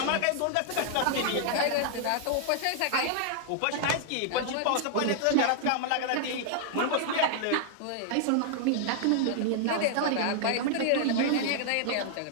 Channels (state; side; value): different; both; correlation -0.01